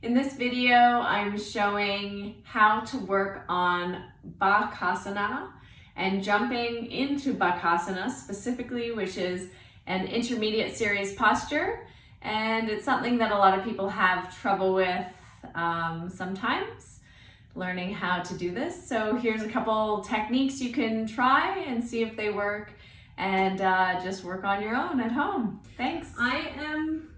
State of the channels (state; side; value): identical; both; correlation 1.00